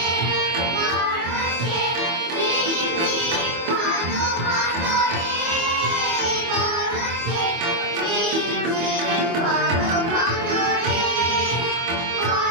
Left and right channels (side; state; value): left; late; 24 ms